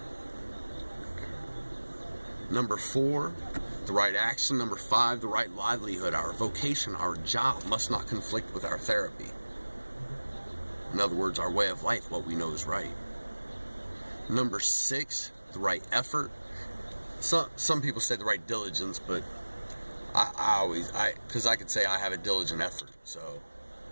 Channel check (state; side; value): inverted; both; correlation -1.00